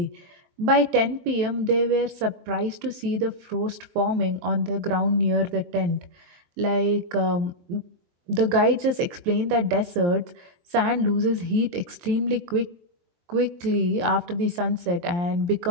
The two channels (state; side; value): late; left; 23 ms